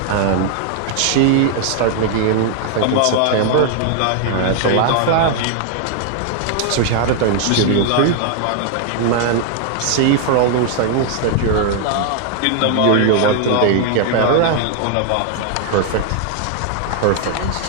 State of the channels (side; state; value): both; different; correlation 0.00